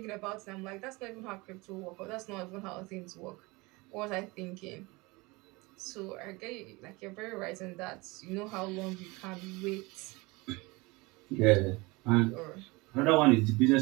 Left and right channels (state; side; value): quieter; left; 24.3 dB